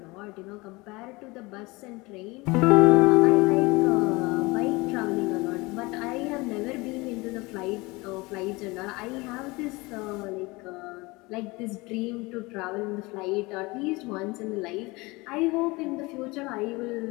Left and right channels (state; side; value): quieter; right; 23.8 dB